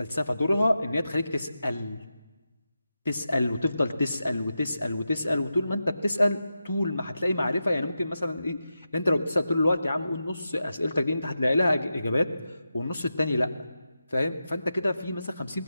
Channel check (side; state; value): both; inverted; correlation -0.90